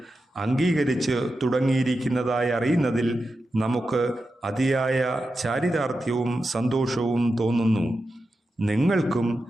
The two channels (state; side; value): normal; both; correlation 0.90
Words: അംഗീകരിച്ച് തുടങ്ങിയിരിക്കുന്നതായി അറിയുന്നതിൽ നമുക്ക് അതിയായ ചാരിതാർത്ഥ്യവും സന്തോഷവും തോന്നുന്നു. നിങ്ങൾക്കും